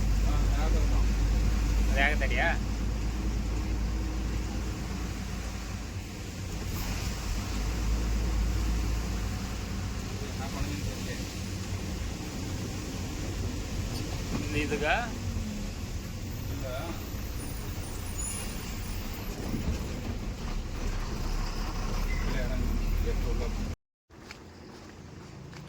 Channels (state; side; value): identical; both; correlation 1.00